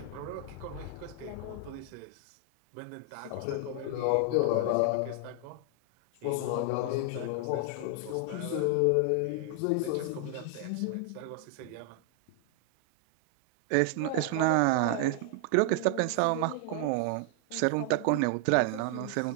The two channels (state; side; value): different; both; correlation 0.00